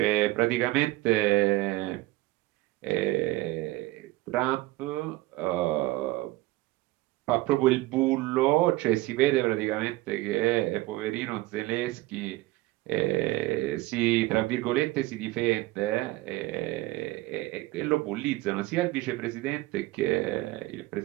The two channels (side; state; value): left; quieter; 18.8 dB